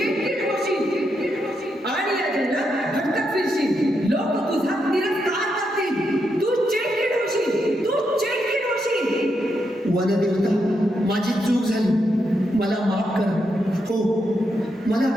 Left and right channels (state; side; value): normal; both; correlation 0.82